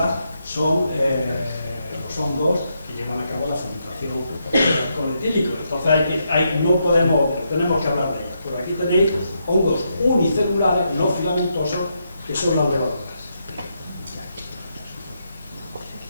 son los hongos que llevan a cabo la fermentación del alcohol etílico. Entonces no podemos, tenemos que hablar de ellas. Pero aquí tenéis hongos unicelulares, no filamentosos, que son las levaduras.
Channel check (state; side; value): inverted; both; correlation -0.80